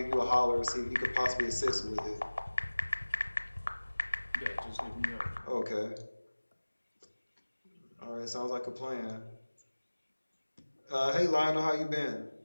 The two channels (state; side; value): inverted; both; correlation -1.00